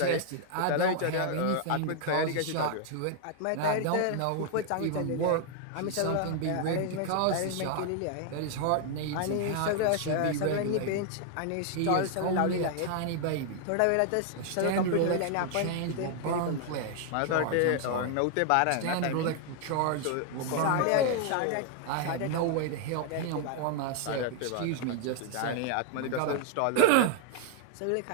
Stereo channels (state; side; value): different; both; correlation 0.00